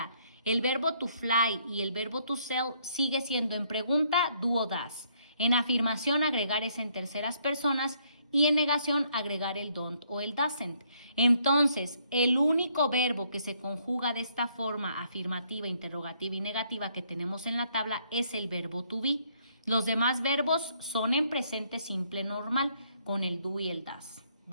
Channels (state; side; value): inverted; both; correlation -0.68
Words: El verbo to fly y el verbo to sell sigue siendo en pregunta do o does. En afirmación agregar es en terceras personas y en negación agregar el don't o el doesn't. Entonces, el único verbo que se conjuga de esta forma afirmativa, interrogativa y negativa que tenemos en la tabla es el verbo to be. Los demás verbos son en presente simple normal con el do y el does,